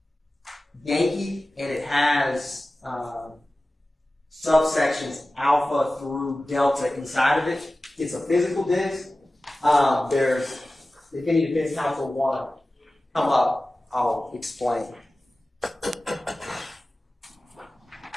Yankee, and it has subsections alpha through delta inside of it. It's a physical disc. If any defense counsel want to come up, I'll explain.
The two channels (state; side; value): normal; both; correlation 0.96